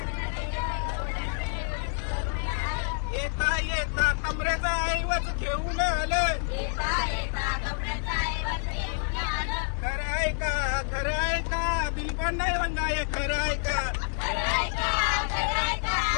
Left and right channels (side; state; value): right; silent; 59 dB below the other